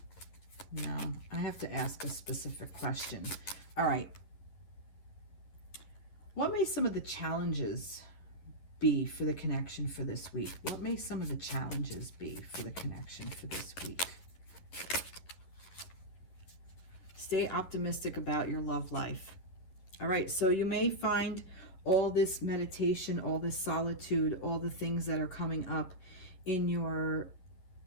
No, I have to ask a specific question. All right. What may some of the challenges be for the connection for this week? What may some of the challenges be for the connection for this week? Stay optimistic about your love life. All right, so you may find all this meditation, all this solitude, all the things that are coming up in your,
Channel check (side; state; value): right; late; 11 ms